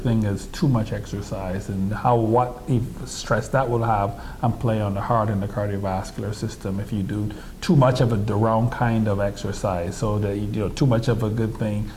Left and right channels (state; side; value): identical; both; correlation 1.00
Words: as too much exercise, and what stress that will have and play on the heart and the cardiovascular system if you do too much of the wrong kind of exercise, so that too much of a good thing